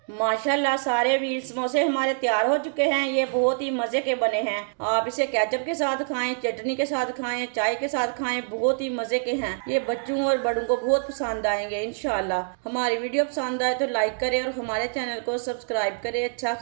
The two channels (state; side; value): silent; left; digital silence